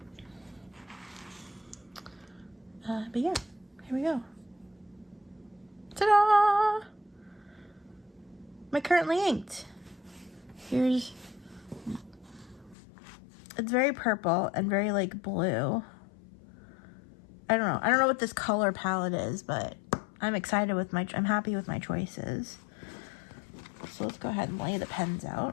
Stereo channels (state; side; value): drops out; right; at 12.8 s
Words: But yeah, here we go. Ta-da! My currently inked. Here's... It's very purple and very like blue. I don't know. I don't know what this color palette is, but I'm excited with I'm happy with my choices. So let's go ahead and lay the pens